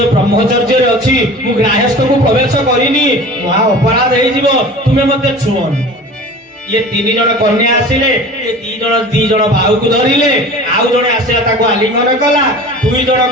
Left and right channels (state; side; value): normal; both; correlation 0.39